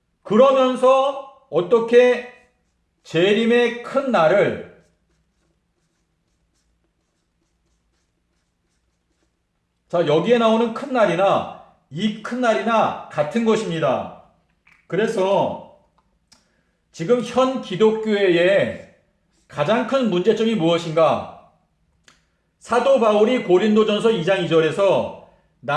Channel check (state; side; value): identical; both; correlation 1.00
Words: 그러면서 어떻게 재림의 큰 날을 자, 여기에 나오는 큰 날이나 이 큰 날이나 같은 것입니다. 그래서 지금 현 기독교회의 가장 큰 문제점이 무엇인가? 사도 바울이 고린도전서 2장 2절에서